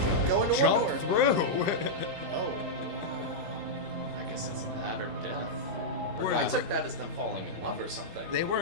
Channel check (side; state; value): left; late; 17 ms